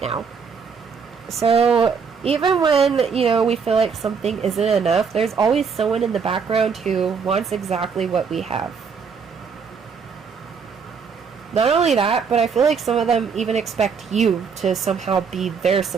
now. So even when, you know, we feel like something isn't enough, there's always someone in the background who wants exactly what we have. Not only that, but I feel like some of them even expect you to somehow be their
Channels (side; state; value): left; quieter; 5.9 dB